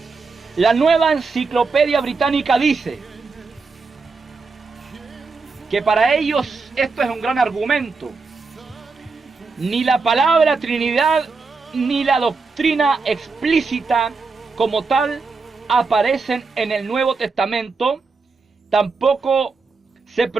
la Nueva Enciclopedia Británica dice que para ellos esto es un gran argumento. Ni la palabra Trinidad ni la doctrina explícita como tal aparecen en el Nuevo Testamento. Tampoco se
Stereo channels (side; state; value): left; quieter; 4.3 dB